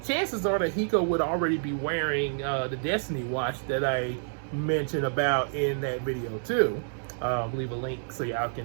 chances are that Hiko would already be wearing the Destiny watch that I mentioned about in that video too. I'll leave a link so y'all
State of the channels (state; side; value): silent; left; digital silence